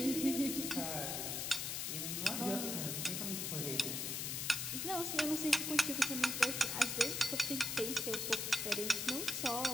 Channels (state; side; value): noise; left; hiss, 2 dB below the sound